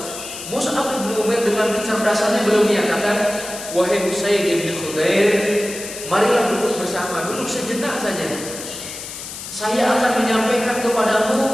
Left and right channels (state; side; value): noise; left; hiss, 10 dB below the sound